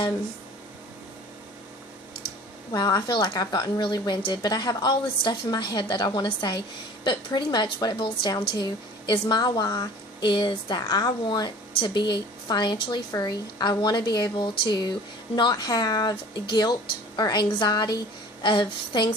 wow, I feel like I've gotten really winded, but I have all this stuff in my head that I want to say. But pretty much what it boils down to is my why is that I want to be financially free. I want to be able to not have guilt or anxiety of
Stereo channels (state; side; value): normal; both; correlation 0.45